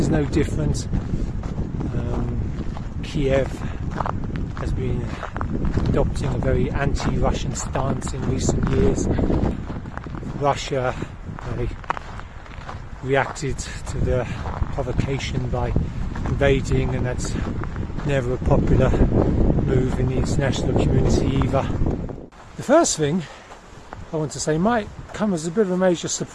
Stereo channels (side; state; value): both; identical; correlation 1.00